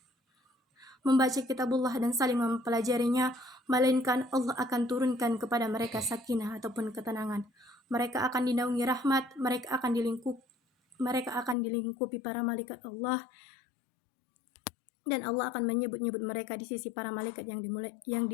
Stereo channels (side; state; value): right; drops out; at 11.6 s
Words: dan saling mempelajarinya, melainkan Allah akan turunkan kepada mereka sakinah ataupun ketenangan. Mereka akan dinaungi rahmat, mereka akan dilingkupi para malaikat Allah, dan Allah akan menyebut-nyebut mereka di sisi para malaikat yang